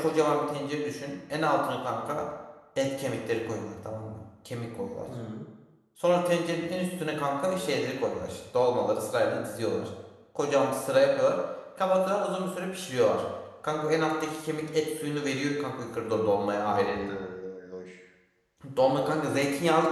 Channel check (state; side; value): identical; both; correlation 1.00